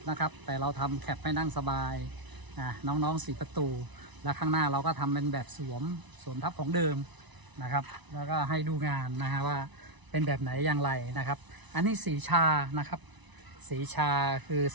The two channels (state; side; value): late; left; 1.0 ms